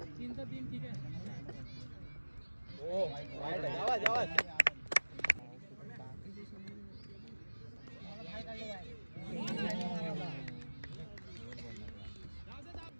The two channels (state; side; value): inverted; both; correlation -1.00